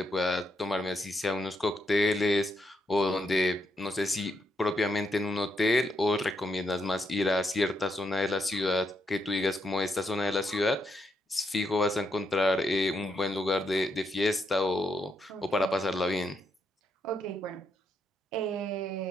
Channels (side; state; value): both; normal; correlation 0.79